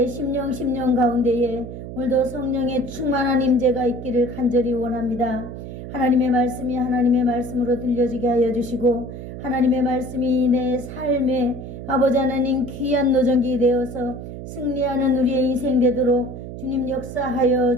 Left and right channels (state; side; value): noise; right; hum, 10 dB below the sound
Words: 심령 가운데에 오늘도 성령의 충만한 임재가 있기를 간절히 원합니다. 하나님의 말씀이 하나님의 말씀으로 들려지게 하여 주시고 하나님의 말씀이 내 삶에 아버지 하나님 귀한 노정기 되어서 승리하는 우리의 인생 되도록 주님 역사하여